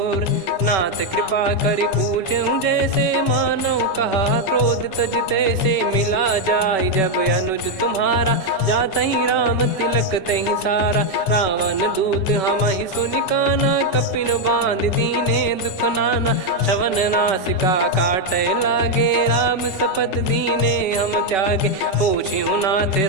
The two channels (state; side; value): late; right; 5.2 ms